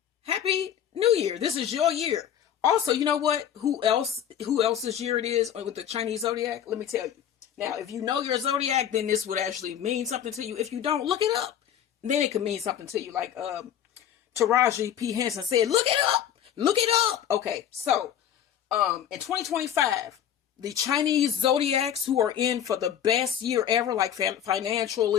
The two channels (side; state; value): right; quieter; 9.8 dB